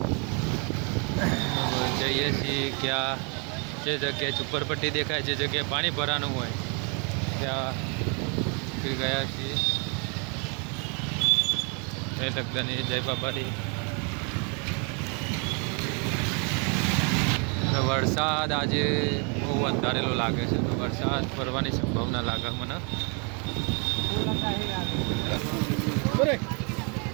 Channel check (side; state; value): left; quieter; 35.4 dB